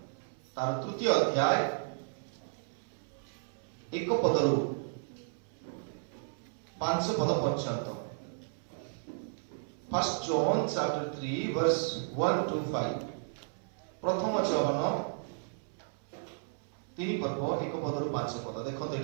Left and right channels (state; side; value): silent; left; 55 dB below the other